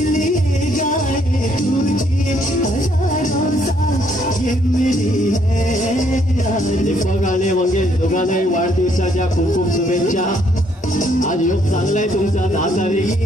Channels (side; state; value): both; normal; correlation 0.69